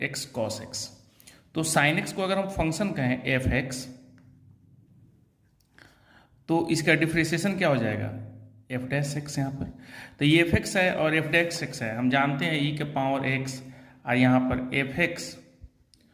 x cos x. तो साइन एक्स को अगर हम फंक्शन कहें एफ एक्स, तो इसका डिफ्रेंशिएशन क्या हो जाएगा? F dash x. यहाँ पर तो ये एफ एक्स है और एफ डैश एक्स है, हम जानते हैं ई के पावर एक्स, और यहाँ पर एफ एक्स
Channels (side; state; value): both; identical; correlation 1.00